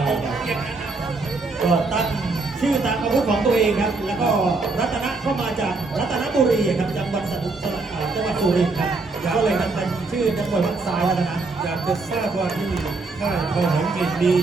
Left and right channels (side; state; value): left; quieter; 3.7 dB